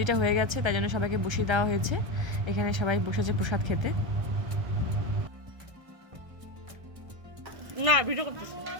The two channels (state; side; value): late; left; 1.6 ms